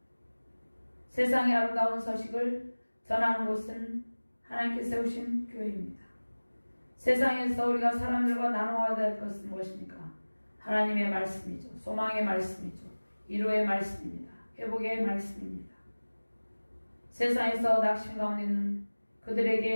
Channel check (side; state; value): both; inverted; correlation -1.00